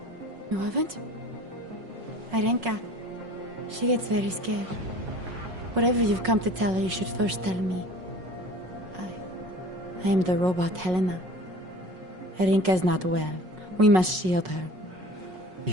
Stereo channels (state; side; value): late; left; 5.4 ms